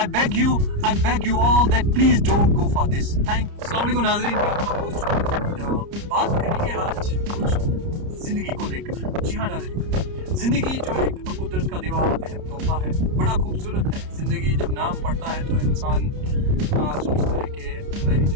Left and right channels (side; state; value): left; late; 30 ms